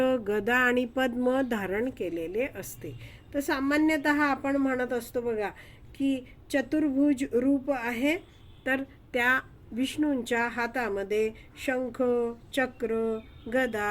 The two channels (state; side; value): identical; both; correlation 1.00